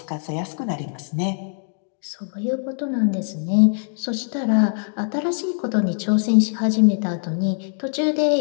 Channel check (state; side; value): silent; right; digital silence